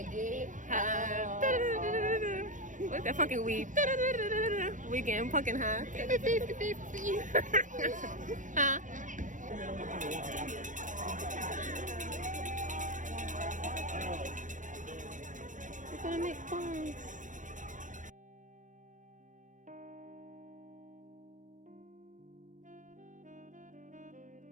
then look that fucking weed. We getting pumpkin high. Huh? We're gonna make bones.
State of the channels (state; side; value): late; left; 0.37 ms